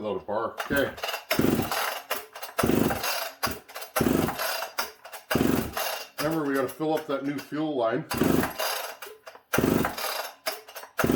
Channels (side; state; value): both; identical; correlation 1.00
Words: a bar. Okay. Remember, we got to fill up that new fuel line.